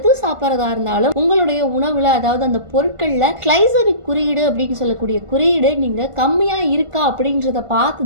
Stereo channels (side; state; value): left; late; 1.5 ms